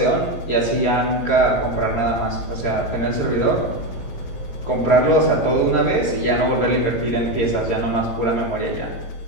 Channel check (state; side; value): late; right; 17 ms